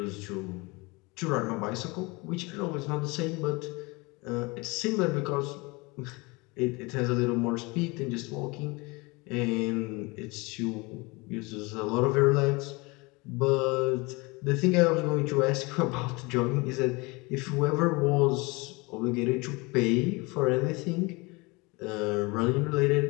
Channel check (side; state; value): right; quieter; 25.8 dB